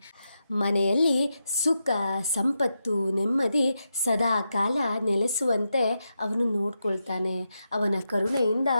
ಮನೆಯಲ್ಲಿ ಸುಖ, ಸಂಪತ್ತು, ನೆಮ್ಮದಿ ಸದಾ ಕಾಲ ನೆಲೆಸುವಂತೆ ಅವನು ನೋಡ್ಕೊಳ್ತಾನೆ. ಅವನ ಕರುಣೆಯಿಂದ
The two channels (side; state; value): both; inverted; correlation -0.86